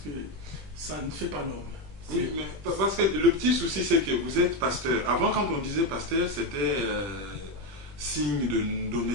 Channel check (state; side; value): late; left; 20 ms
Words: que ça ne fait pas l'homme. Oui, mais parce que le petit souci, c'est que vous êtes pasteur. Avant, quand on disait pasteur, c'était signe